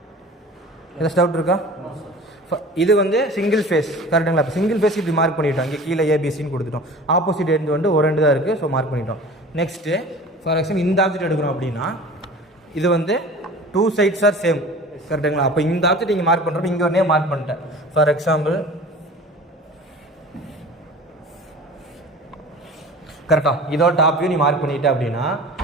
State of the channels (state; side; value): normal; both; correlation 0.40